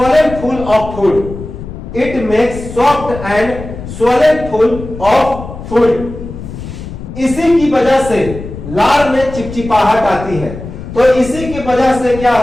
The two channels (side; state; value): left; noise; rumble, 11 dB below the sound